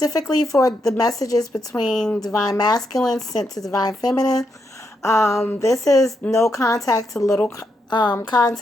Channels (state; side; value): normal; both; correlation 0.81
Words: for the messages between Divine Masculine sent to Divine Feminine. This is no contact to little